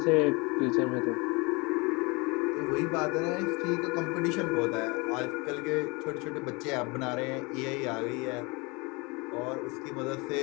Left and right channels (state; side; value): quieter; right; 27.7 dB